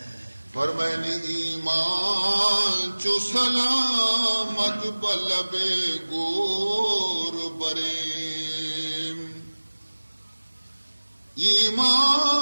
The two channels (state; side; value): inverted; both; correlation -1.00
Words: فرمائنی ایمان چو سلامت بلب گور بریم،